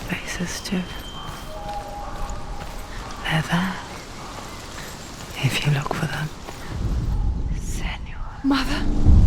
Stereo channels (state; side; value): identical; both; correlation 1.00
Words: too? They're there, if you look for them. Senua. Mother.